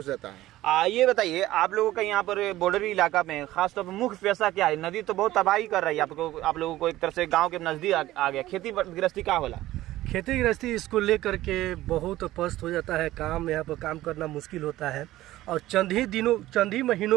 जाता है। ये बताइए आप लोगों का यहाँ पर बॉर्डरी इलाका में खासतौर पर मुख्य पेशा क्या है? नदी तो बहुत तबाही कर रही है आप लोगों को। एक तरह से गाँव के नजदीक आ गया। खेती गृहस्थी क्या होला? खेती गृहस्थी इसको लेकर के बहुत पस्त हो जाता है। काम यहाँ पर काम करना मुश्किल होता है। और चंद ही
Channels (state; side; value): quieter; left; 15.7 dB